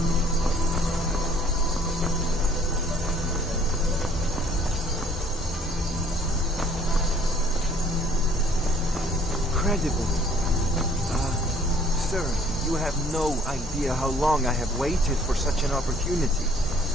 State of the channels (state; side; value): normal; both; correlation 0.58